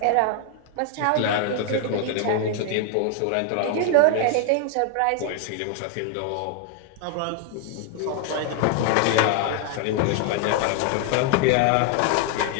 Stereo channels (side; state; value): both; different; correlation 0.00